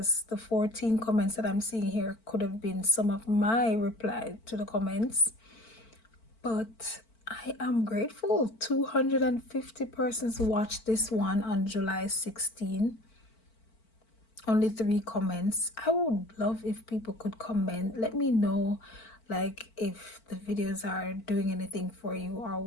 the 14 comments that I'm seeing here could have been some of my reply to the comments. But I am grateful. 250 persons watched this one on July 16. Only 3 comments. I would love if people could comment. Let me know, like, if the videos are doing anything for you or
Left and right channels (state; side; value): late; right; 4.5 ms